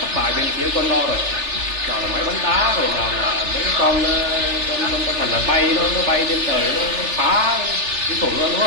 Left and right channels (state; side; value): late; left; 3.4 ms